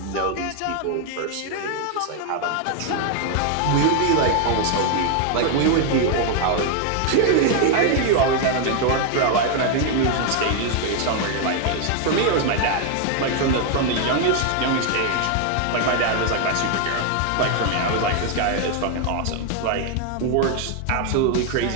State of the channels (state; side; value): different; both; correlation 0.00